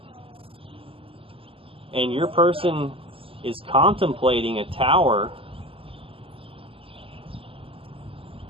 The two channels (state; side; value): late; left; 0.26 ms